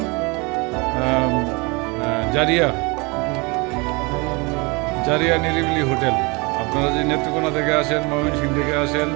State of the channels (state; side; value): quieter; left; 28.0 dB